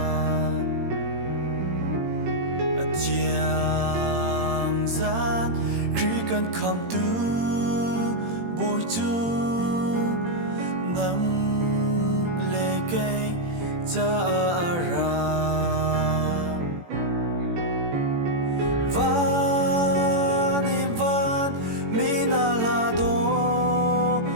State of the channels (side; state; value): left; late; 18 ms